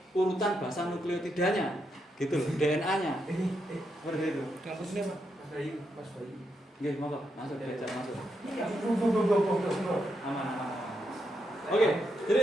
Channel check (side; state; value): both; normal; correlation 0.82